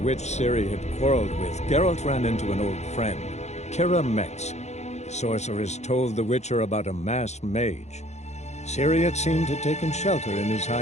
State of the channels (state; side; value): late; right; 0.33 ms